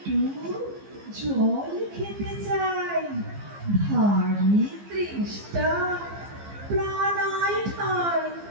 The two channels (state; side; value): late; left; 15 ms